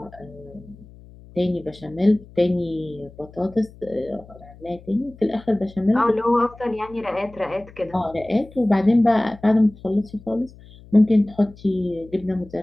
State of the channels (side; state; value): left; noise; hum, 21 dB below the sound